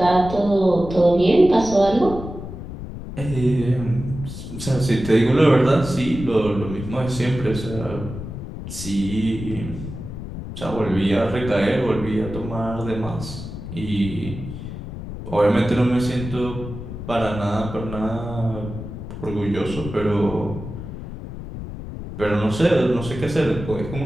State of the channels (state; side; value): noise; left; rumble, 9 dB below the sound